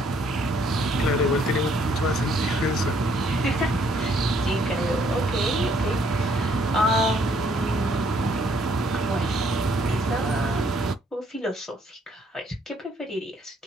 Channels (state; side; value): normal; both; correlation 0.66